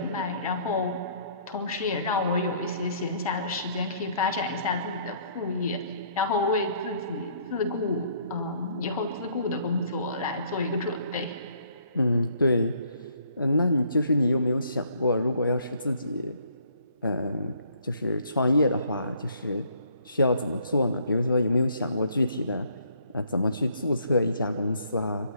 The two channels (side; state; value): both; inverted; correlation -0.64